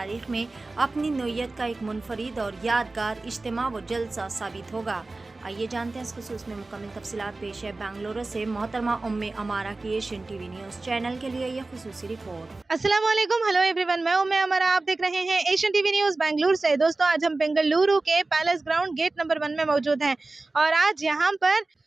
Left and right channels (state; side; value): quieter; left; 3.3 dB